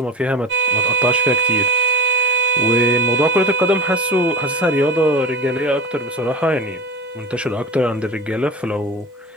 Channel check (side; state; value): both; normal; correlation 0.30